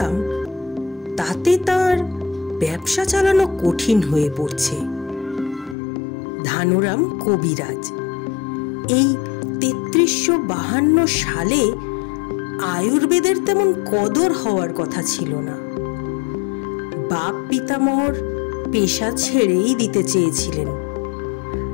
তাতে তার ব্যবসা চালানো কঠিন হয়ে পড়ছে। ধানুরাম কবিরাজ। এই ৩৩৫২ সালে আয়ুর্বেদের তেমন কদর হওয়ার কথা ছিল না। বাপ পিতামহর পেশা ছেড়েই দিতে চেয়েছিলেন,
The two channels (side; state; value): right; drops out; at 5.8 s